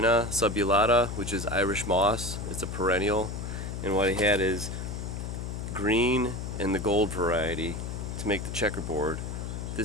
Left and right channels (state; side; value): noise; left; hum, 5 dB below the sound